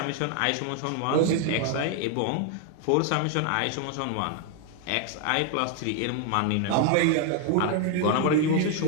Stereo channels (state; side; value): different; both; correlation 0.01